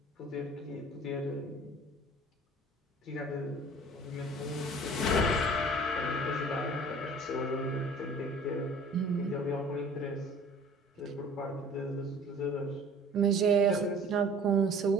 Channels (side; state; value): both; normal; correlation 0.48